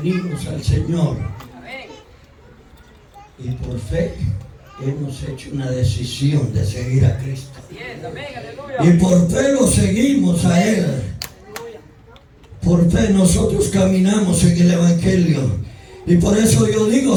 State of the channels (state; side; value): identical; both; correlation 1.00